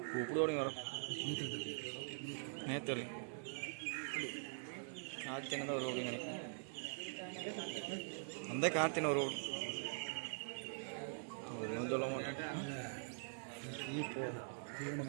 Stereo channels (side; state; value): left; silent; digital silence